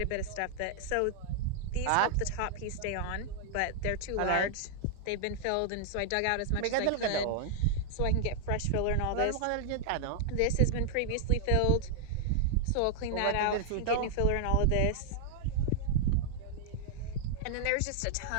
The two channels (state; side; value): different; both; correlation -0.01